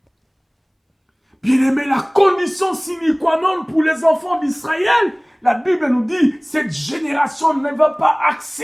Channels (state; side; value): identical; both; correlation 1.00